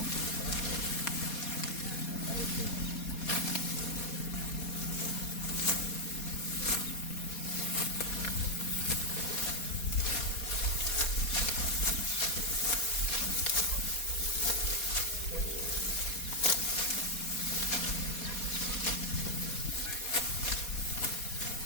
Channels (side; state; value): right; late; 4.2 ms